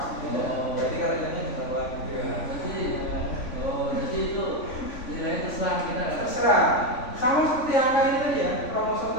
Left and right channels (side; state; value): right; late; 3.5 ms